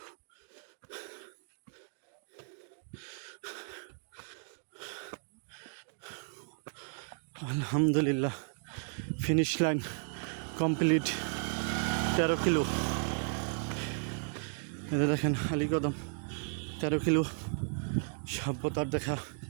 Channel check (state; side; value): silent; left; 55 dB below the other